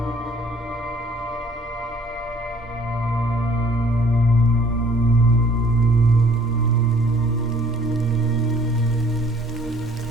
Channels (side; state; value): both; normal; correlation 0.56